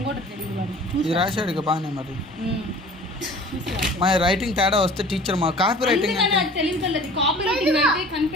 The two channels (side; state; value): both; normal; correlation 0.45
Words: కూడా తెలియదు వాడు ఇది రాశాడు ఇక బాగానే మరి మా రైటింగ్ తేడా వస్తే టీచర్ మా కాపీ రైటింగ్ తెలియదు కాపీ రైటింగ్ అంటే